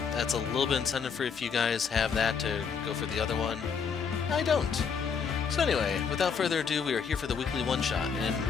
that's a little bit incentive for if you guys have that to go for the other one. I don't. So anyway, without further ado, we are here for the weekly one-shot, and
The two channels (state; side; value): quieter; right; 6.3 dB